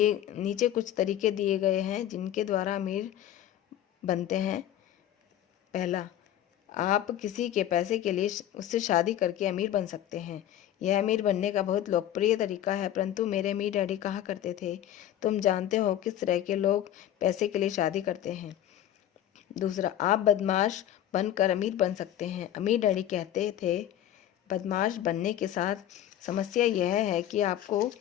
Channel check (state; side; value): quieter; right; 11.6 dB